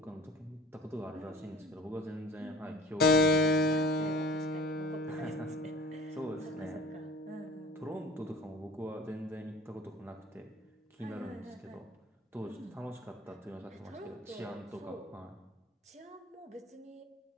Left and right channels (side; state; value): both; normal; correlation 0.44